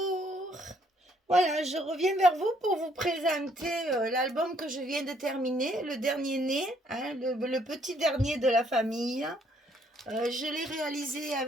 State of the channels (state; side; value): normal; both; correlation 0.67